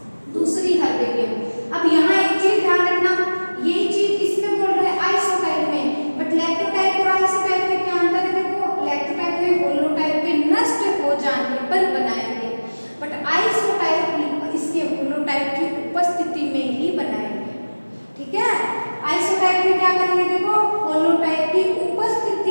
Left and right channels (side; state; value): both; inverted; correlation -1.00